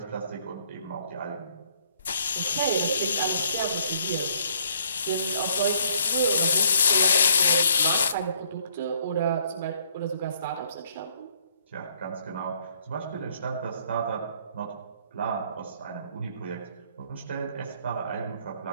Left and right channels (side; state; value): both; inverted; correlation -0.65